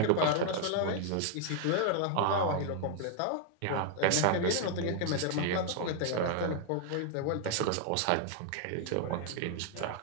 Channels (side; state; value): both; different; correlation 0.00